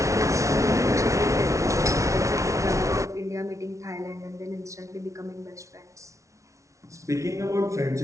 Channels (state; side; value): late; left; 0.15 ms